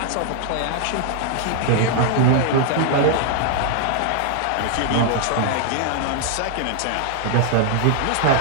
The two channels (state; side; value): different; both; correlation 0.00